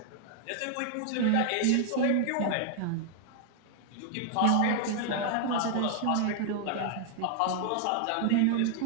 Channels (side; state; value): both; different; correlation 0.00